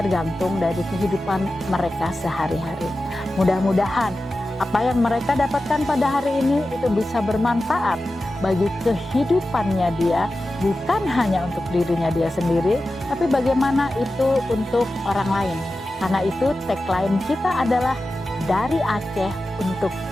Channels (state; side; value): normal; both; correlation 0.93